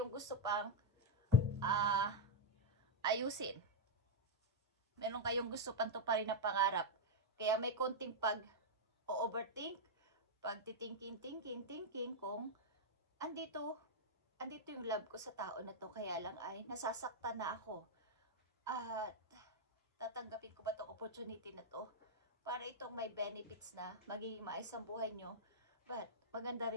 gusto pang ayusin. Meron kayong gusto pang tuparin na pangarap. Kaya may konting pag-overthink, pag-thinking kung andito yung love ko sa tao na to, kaya lang ay nasasaktan na ako. At tatanggapin ko ba itong opportunity na to para itong may benefits na magiging maayos ang buhay nyo. But maganda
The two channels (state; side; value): normal; both; correlation -0.03